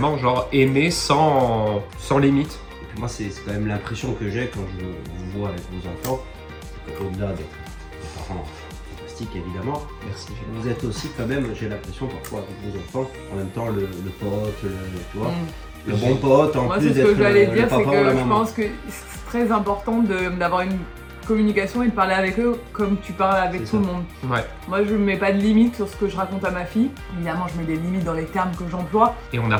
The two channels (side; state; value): both; identical; correlation 1.00